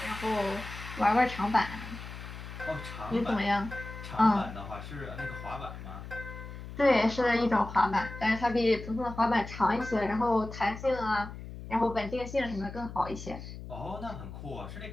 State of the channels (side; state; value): left; noise; hum, 11 dB below the sound